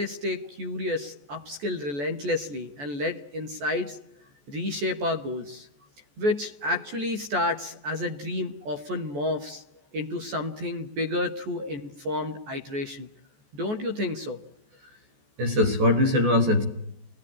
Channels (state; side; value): late; left; 14 ms